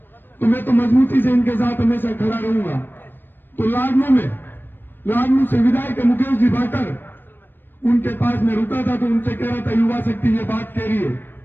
तो मैं तो मजबूती से इनके साथ हमेशा खड़ा रहूंगा। तो लाडनू से विधायक मुकेश जी भाकर, उनके पास मैं रुका था, तो उनसे कह रहा था युवा शक्ति ये बात कह रही है।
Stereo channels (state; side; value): late; right; 0.095 ms